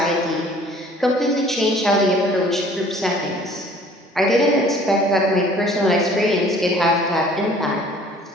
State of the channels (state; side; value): normal; both; correlation 0.53